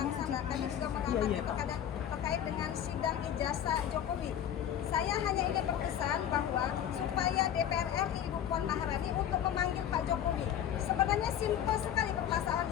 sana, kami juga mengamati terkait dengan sidang ijazah Jokowi. Saya hanya ingin berpesan bahwa supaya DPR RI Ibu Puan Maharani untuk memanggil Pak Jokowi. Sebenarnya simpel sekali permasalahan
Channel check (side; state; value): right; quieter; 10.1 dB